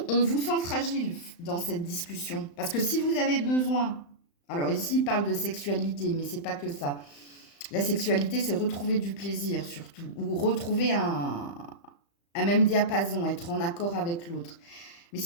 on vous sent fragile dans cette discussion. Parce que si vous avez besoin, alors ici, il parle de sexualité, mais c'est pas que ça. La sexualité, c'est retrouver du plaisir surtout, ou retrouver un même diapason, être en accord avec l'autre. Mais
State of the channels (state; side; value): late; right; 35 ms